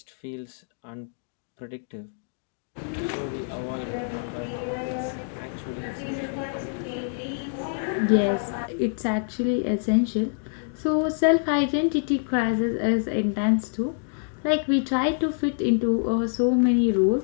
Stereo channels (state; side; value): silent; right; digital silence